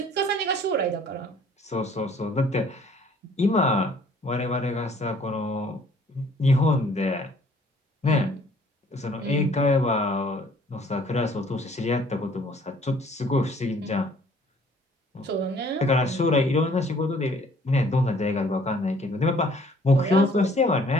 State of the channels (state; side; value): normal; both; correlation 0.58